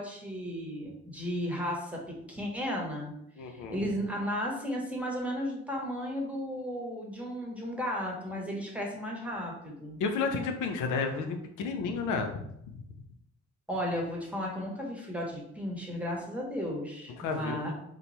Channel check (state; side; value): normal; both; correlation 0.41